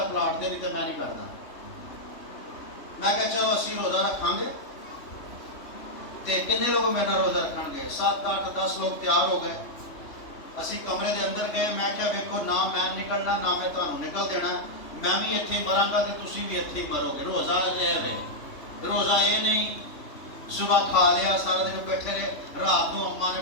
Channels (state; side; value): late; right; 3.2 ms